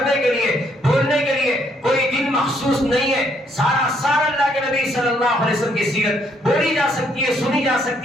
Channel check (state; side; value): normal; both; correlation 0.70